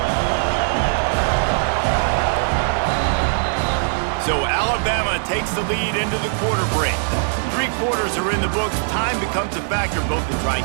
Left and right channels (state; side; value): silent; left; 59 dB below the other